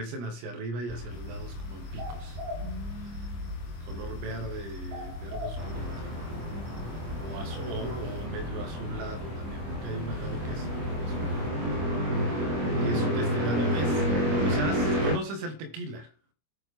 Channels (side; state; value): left; late; 25 ms